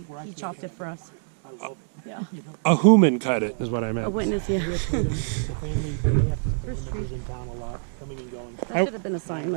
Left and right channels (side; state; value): left; silent; digital silence